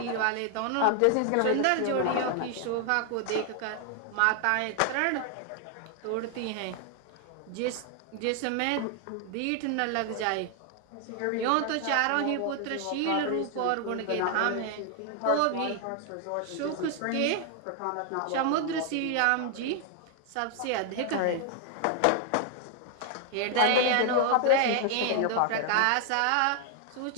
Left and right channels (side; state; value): both; different; correlation 0.00